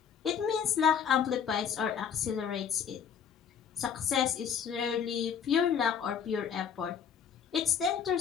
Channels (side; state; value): right; quieter; 7.6 dB